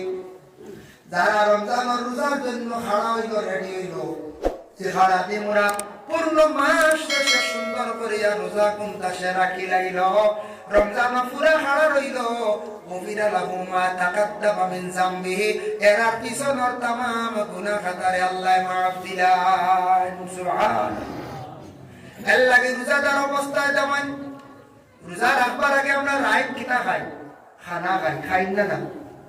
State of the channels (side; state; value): both; identical; correlation 1.00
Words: যারা রমজানের রোজার জন্য খাড়া হইল, রেডি হইল, সে খাড়াতে মোরা পূর্ণ মাস শেষে সুন্দর করিয়া রোজা কুমতা সে রাখি লাইল, রমজান পুরা খাড়া রইল, গুফিরা লাহু মা তাকাদ্দামা মিন যামবিহি, এর পিছনের तमाम গুনাহ খাতারে আল্লাহ মাফ দিলেন। সুবহানাল্লাহ। এর লাগি রোজাদার অবস্থায় যেমন রোজা রাখবার আগে আমরা রাইট কিনা খাই, খানা খাই, খাই না না